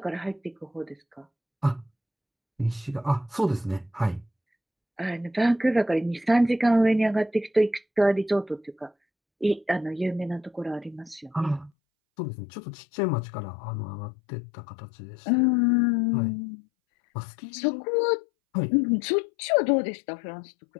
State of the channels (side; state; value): right; drops out; at 11.7 s